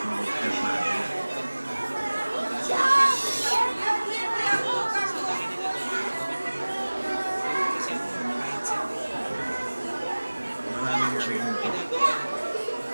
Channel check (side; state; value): both; inverted; correlation -1.00